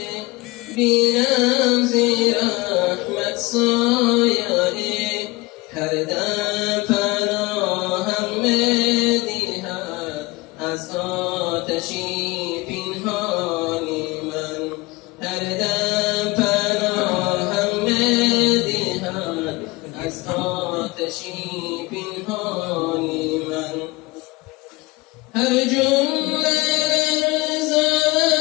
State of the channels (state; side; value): quieter; right; 22.5 dB